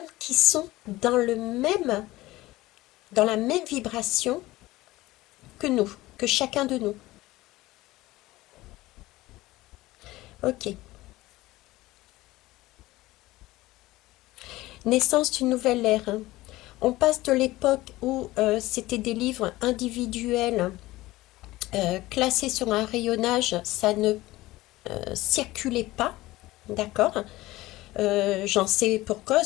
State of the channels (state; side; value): quieter; right; 18.2 dB